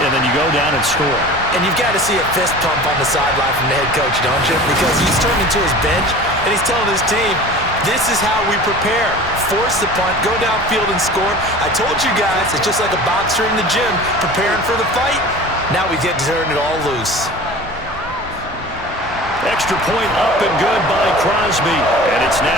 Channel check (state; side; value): normal; both; correlation 0.39